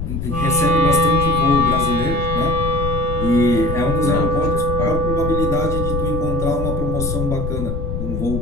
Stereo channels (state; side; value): noise; left; rumble, 4 dB below the sound